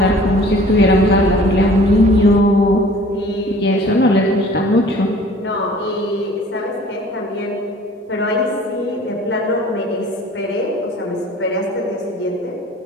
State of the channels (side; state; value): both; normal; correlation 0.49